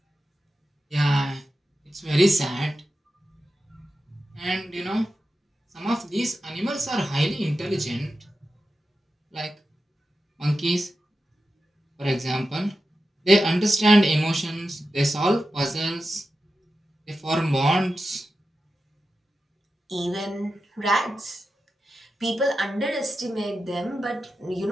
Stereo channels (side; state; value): both; normal; correlation 0.91